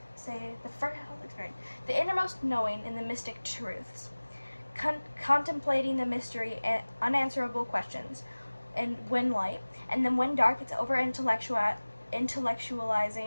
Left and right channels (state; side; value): inverted; both; correlation -1.00